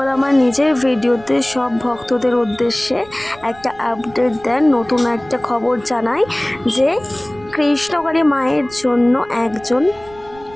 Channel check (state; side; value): noise; right; rumble, 23 dB below the sound